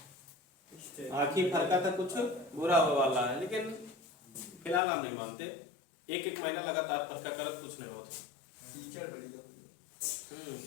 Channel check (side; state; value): right; drops out; at 4.8 s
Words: आंखी फरकत है, कुछ बुरा होने वाला है। लेकिन फिलहाल हम नहीं मानते, एक एक महीना लगातार फरका करत कुछ नहीं होता। कीचड़ बढ़िया